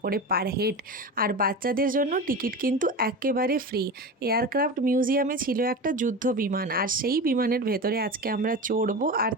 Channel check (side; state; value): both; normal; correlation 0.27